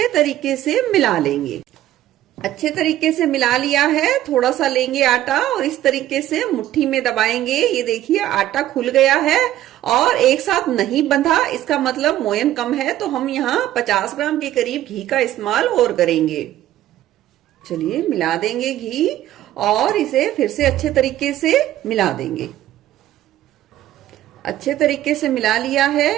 तरीके से मिला लेंगे। अच्छे तरीके से मिला लिया है। थोड़ा सा लेंगे आटा और इस तरीके से मुट्ठी में दबाएंगे। ये देखिए आटा खुल गया है और एक साथ नहीं बंधा, इसका मतलब मोयन कम है। तो हम यहाँ 50 ग्राम के करीब घी का इस्तेमाल और करेंगे। चलिए मिला देंगे घी और इसे फिर से अच्छे तरीके से मिला देंगे। अच्छे तरीके से मिला लिया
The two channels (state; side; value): quieter; left; 13.5 dB